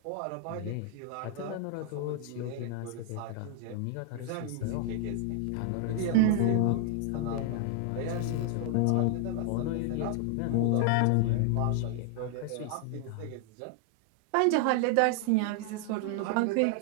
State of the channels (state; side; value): different; both; correlation 0.00